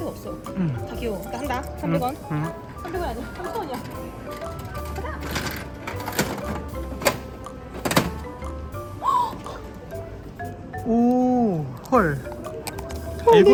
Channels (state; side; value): identical; both; correlation 1.00